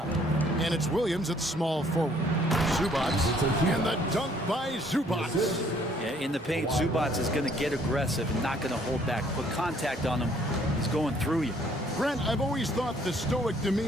And it's Williams at small forward. Zubats, and the dunk by Zubats. Yeah, in the paint, Zubats is going to get aggressive and not going to hold back. Put contact on him. He's going through you. Brent, I've always thought the stoic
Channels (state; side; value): normal; both; correlation 0.62